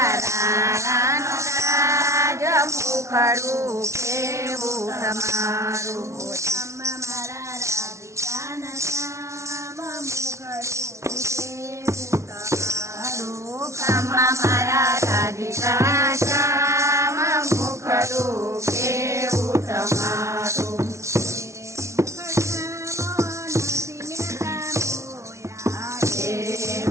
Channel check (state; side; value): late; left; 0.14 ms